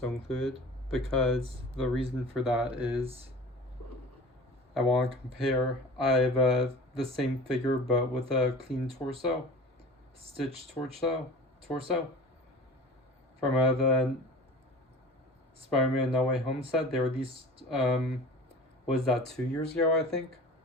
included, because the reason for that is I want to compare. I have the same figure but with a clean torso, stitched torso from the Spider-Man No Way Home set. They released was that 2 years ago? I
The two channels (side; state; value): both; normal; correlation 0.40